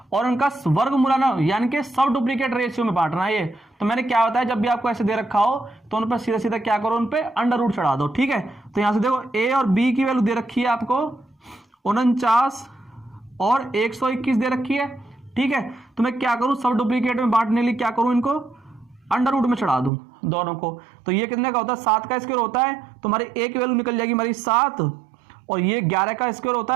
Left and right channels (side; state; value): left; drops out; at 19.9 s